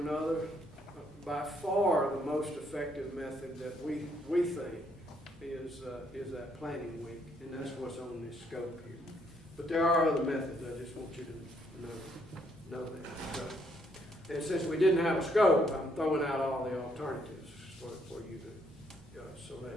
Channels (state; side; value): normal; both; correlation 0.71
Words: By far, the most effective method that we think is that planning week, and that's what's on this scope here. But there are other methods. I just want you to know that. So, and since we didn't have a scope, I'm throwing out all the alternatives for you to